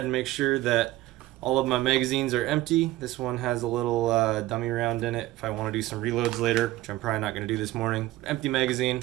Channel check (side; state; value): left; quieter; 16.7 dB